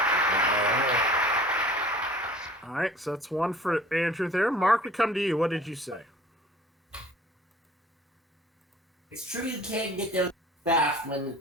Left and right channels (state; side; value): normal; both; correlation 0.48